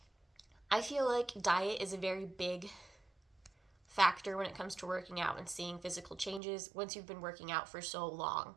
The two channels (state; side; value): drops out; left; at 6.4 s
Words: I feel like diet is a very big factor when it comes to working out and seeing physical changes once you've been working out for so long.